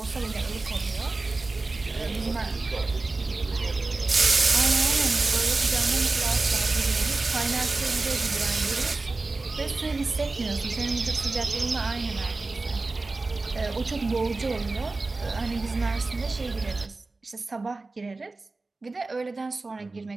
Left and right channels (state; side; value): quieter; left; 3.4 dB